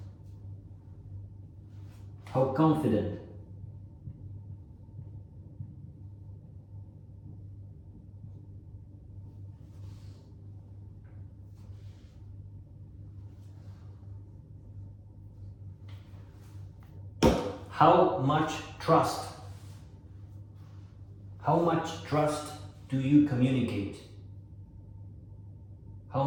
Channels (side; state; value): both; identical; correlation 1.00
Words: How confident? How much trust? How much trust do you communicate? How